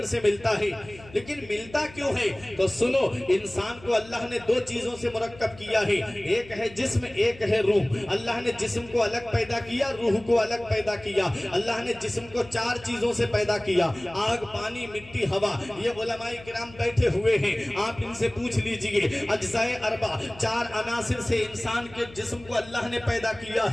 سے ملتا ہے، لیکن ملتا کیوں ہے؟ تو سنو، انسان کو اللہ نے دو چیزوں سے مرکب کیا ہے، ایک ہے جسم، ایک ہے روح۔ اللہ نے جسم کو الگ پیدا کیا، روح کو الگ پیدا کیا۔ اللہ نے جسم کو چار چیزوں سے پیدا کیا، آگ، پانی، مٹی، ہوا۔ یہ علماء کرام بیٹھے ہوئے ہیں، آپ ان سے پوچھ لیجئے، اجزاء اربع، چار عناصر سے انسان کے جسم کو اللہ نے پیدا کیا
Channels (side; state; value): left; noise; hum, 20 dB below the sound